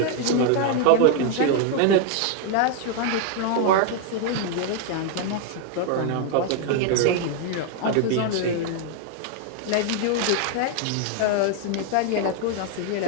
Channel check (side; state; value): both; different; correlation 0.00